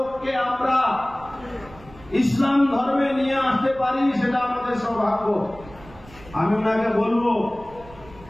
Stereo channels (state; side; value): noise; right; rumble, 21 dB below the sound